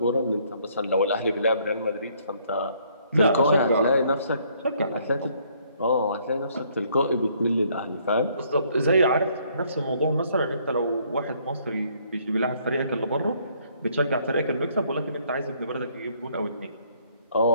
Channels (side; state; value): both; inverted; correlation -0.65